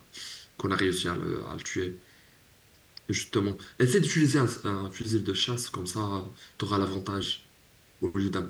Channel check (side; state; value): both; identical; correlation 1.00